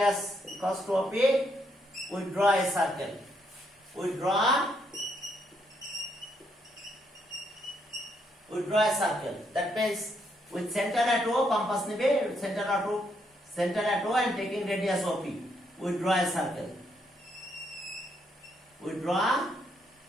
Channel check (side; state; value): both; normal; correlation 0.75